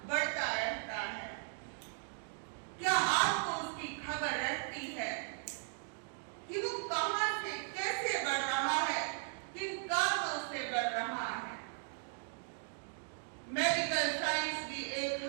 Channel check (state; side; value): silent; left; 53 dB below the other